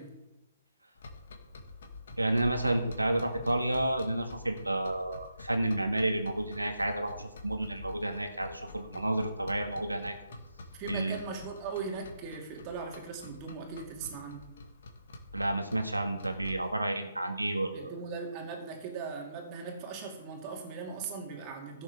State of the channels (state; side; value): inverted; both; correlation -0.85